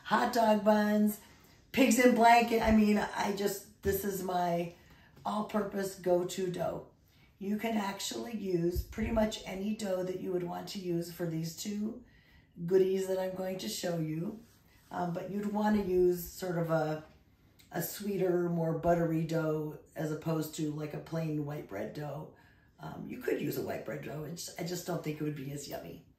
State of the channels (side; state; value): both; identical; correlation 1.00